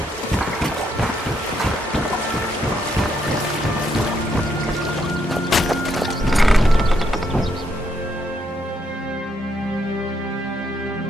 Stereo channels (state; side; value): normal; both; correlation 0.76